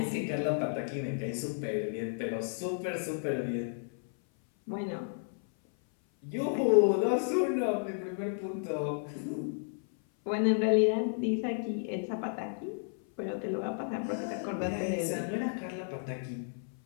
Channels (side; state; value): right; silent; 56 dB below the other